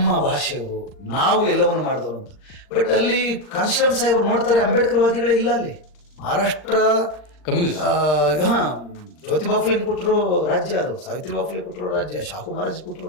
ಭಾಷೆಯವರು, ನಾವು ಎಲ್ಲವನ್ನು ಮಾಡಿದವರು ಅಂತ. ಬಟ್ ಅಲ್ಲಿ ಕಾನ್ಶಿರಾಮ್ ಸಾಹೇಬರು ನೋಡ್ತಾರೆ ಅಂಬೇಡ್ಕರ್ ವಾದಿಗಳೇ ಇಲ್ಲ ಅಲ್ಲಿ. ಮಹಾರಾಷ್ಟ್ರ ಜ್ಯೋತಿಬಾ ಫುಲೆ ಕೊಟ್ಟರು ರಾಜ್ಯ, ಅದು ಸಾವಿತ್ರಿಬಾ ಫುಲೆ ಕೊಟ್ಟರು ರಾಜ್ಯ, ಶಾಹು ಮಹಾರಾಜ್ ಕೊಟ್ಟರು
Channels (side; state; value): right; late; 39 ms